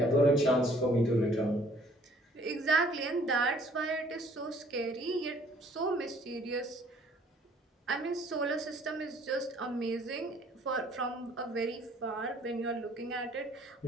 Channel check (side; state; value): both; normal; correlation 0.58